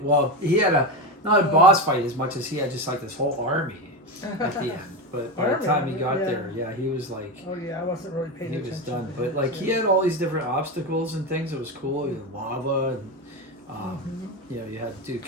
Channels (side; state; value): both; normal; correlation 0.17